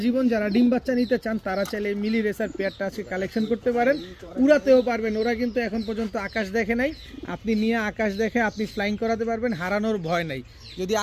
জীবন যারা ডিম বাচ্চা নিতে চান তারা চাইলে মিলি রেসার পেয়ারটা আজকে কালেকশন করতে পারেন, উড়াতেও পারবেন। ওরা কিন্তু এখন পর্যন্ত আকাশ দেখে নাই, আপনি নিয়ে আকাশ দেখে আপনি ফ্লাইং করাতে পারবেন, হারানোর ভয় নাই। যদি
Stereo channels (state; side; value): identical; both; correlation 1.00